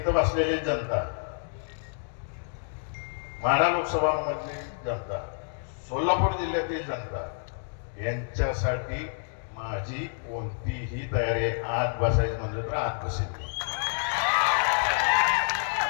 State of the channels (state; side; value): silent; right; digital silence